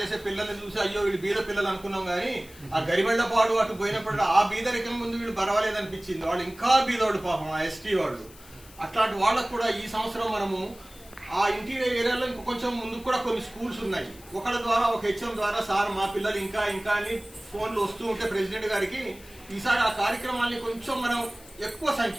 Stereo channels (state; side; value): noise; left; hiss, 21 dB below the sound